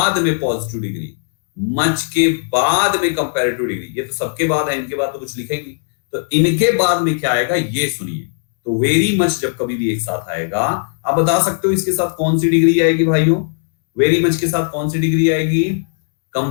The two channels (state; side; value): silent; right; 68 dB below the other